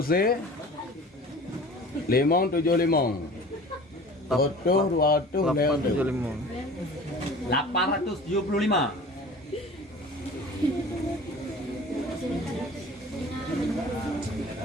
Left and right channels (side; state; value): both; normal; correlation 0.42